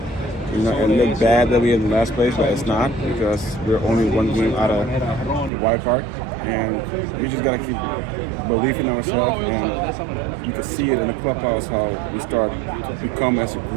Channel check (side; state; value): left; drops out; at 5.5 s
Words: It looked bad that we're in the last place, but it's not because we're only one game out of the wild card, and we just gotta keep believing in ourselves. And you can see it in the clubhouse how we start to become as a